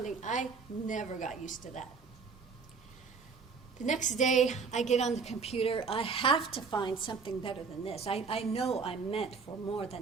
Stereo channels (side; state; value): left; quieter; 5.1 dB